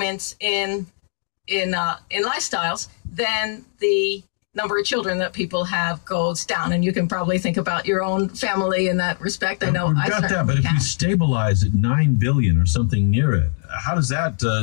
in lifestyles, then the number of children that people have goes down. And you can probably think about your own family in that respect. I know I got that, but if we stabilize at 9 billion or something near it, how does that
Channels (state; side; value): silent; right; 65 dB below the other